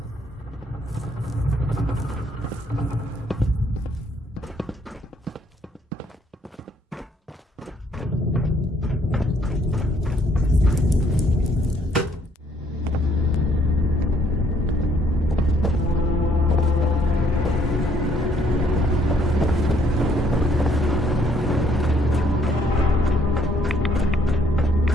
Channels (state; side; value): normal; both; correlation 0.67